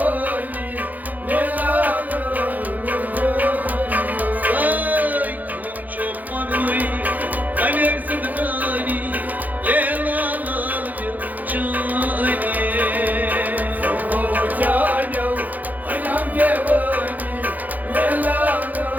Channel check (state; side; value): late; left; 0.081 ms